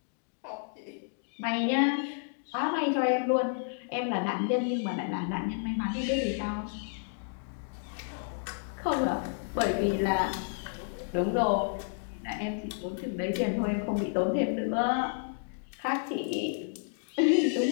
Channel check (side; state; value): right; silent; digital silence